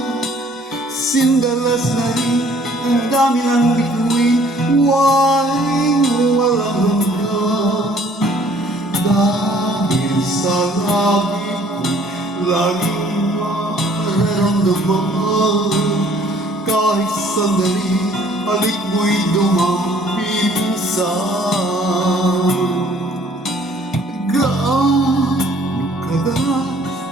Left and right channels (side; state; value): both; normal; correlation 0.58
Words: Sindalas na rin ang dami ng bituin, walang hanggan. Dahil sa laging mararamdaman, kahit sandali, halik mo'y dumampisan. Gaano kadalas